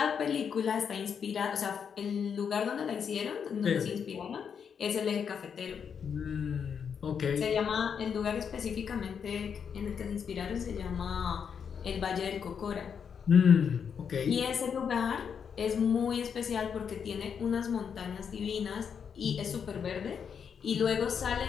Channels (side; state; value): right; quieter; 7.1 dB